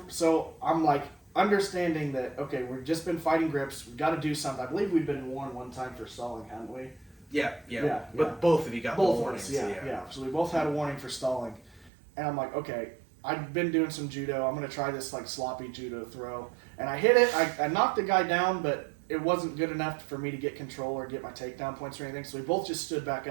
So I'm like, understanding that, okay, we've just been fighting grips, we've got to do something. I believe we've been warned one time for stalling, haven't we? Yeah. But both of you got both warnings. Yeah. So we both had a warning for stalling. And I'm like, okay, I've been doing some judo. I'm going to try this like sloppy judo throw. And I hit it. I knocked the guy down, but it wasn't good enough for me to get control or get my takedown points or anything. So we both just stood back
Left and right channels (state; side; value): drops out; left; at 11.9 s